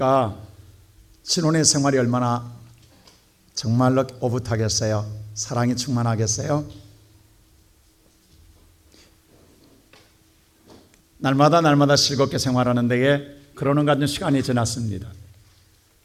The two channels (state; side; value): identical; both; correlation 1.00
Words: 신혼의 생활이 얼마나 정말로 오붓하겠어요? 사랑이 충만하겠어요? 날마다 즐겁게 생활하는 데에 그러는 같은 시간이 지났습니다.